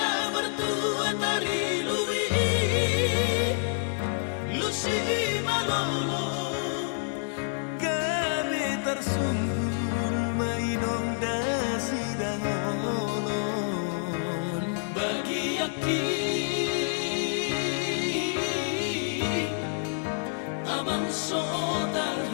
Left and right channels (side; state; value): right; silent; 59 dB below the other